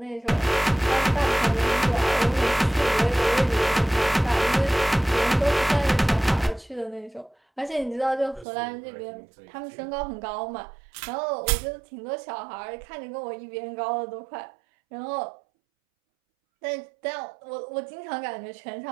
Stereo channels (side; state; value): left; drops out; at 8.5 s